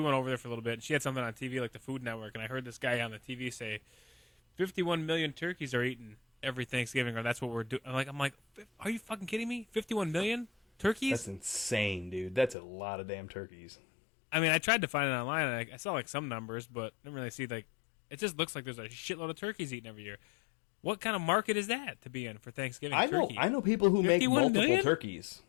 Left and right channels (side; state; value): right; drops out; at 12.6 s